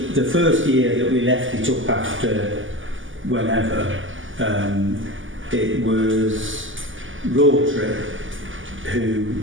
the first year that we left it up after whenever, it was Rotary who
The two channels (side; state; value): left; late; 0.57 ms